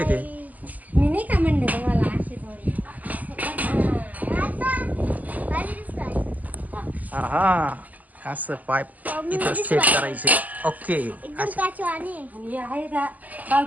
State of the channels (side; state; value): left; late; 0.079 ms